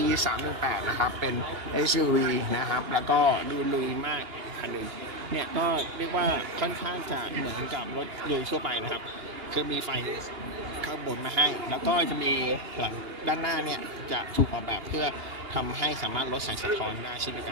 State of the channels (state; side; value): late; left; 2.8 ms